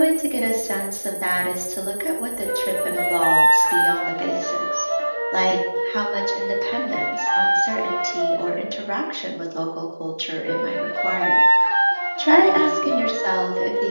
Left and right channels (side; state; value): both; inverted; correlation -1.00